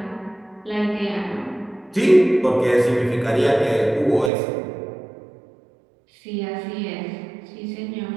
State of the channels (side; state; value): left; drops out; at 4.3 s